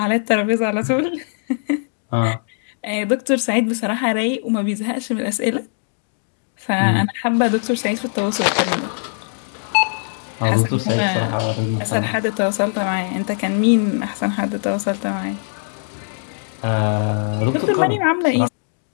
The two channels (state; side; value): silent; right; digital silence